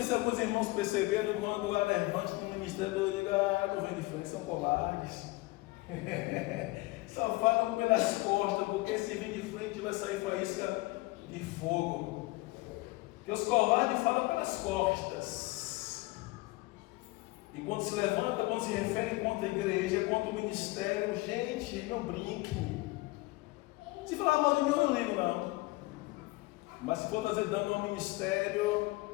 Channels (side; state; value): right; quieter; 21.8 dB